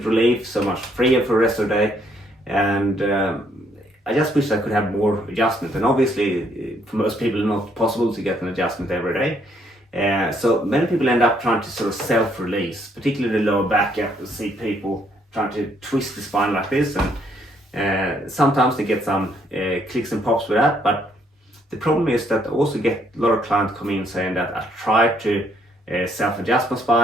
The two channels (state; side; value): normal; both; correlation 0.69